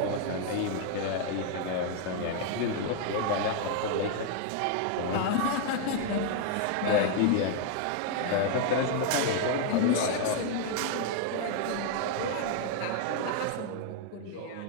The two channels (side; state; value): both; different; correlation 0.00